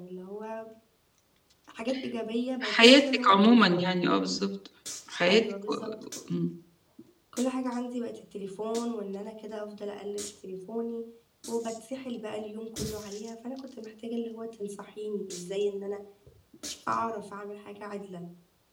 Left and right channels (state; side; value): identical; both; correlation 1.00